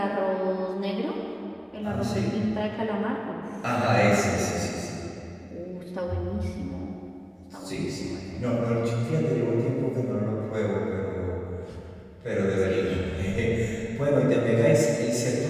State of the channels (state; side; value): identical; both; correlation 1.00